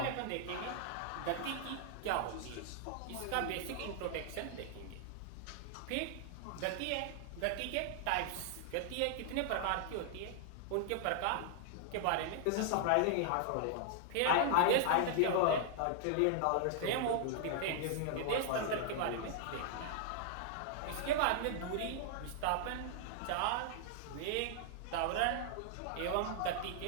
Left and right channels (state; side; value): different; both; correlation -0.01